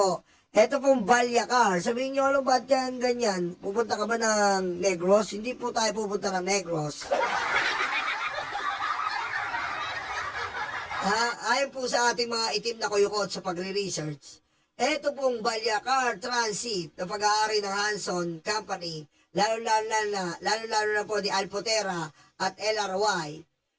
Ito pong Balyacar. Sabihin nyo, ano ba't yan ganyan? Pupunta ka ba ng Negros? Hindi po tayo pupunta ng Negros. Ayon po sa ating mga itim na kuyukot sa pagre-research, ito pong Balyacar Transit na pag-aari ng Hanson Company, lalo-lalo na po ni Alpotera at LRY.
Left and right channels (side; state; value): both; identical; correlation 1.00